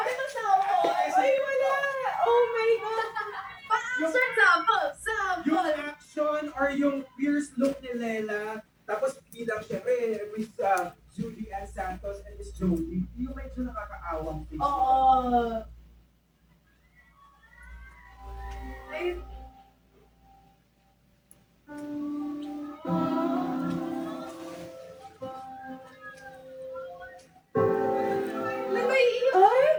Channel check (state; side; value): identical; both; correlation 1.00